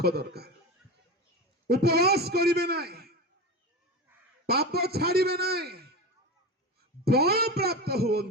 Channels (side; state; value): both; normal; correlation 0.24